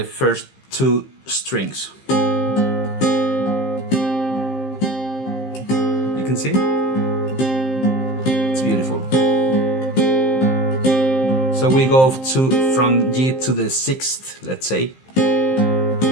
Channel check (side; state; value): right; late; 15 ms